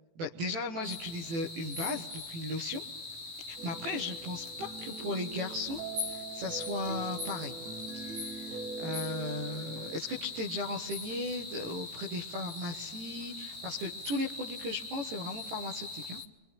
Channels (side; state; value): left; late; 18 ms